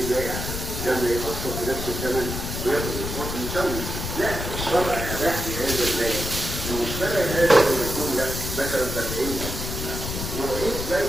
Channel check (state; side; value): noise; left; rumble, 5 dB below the sound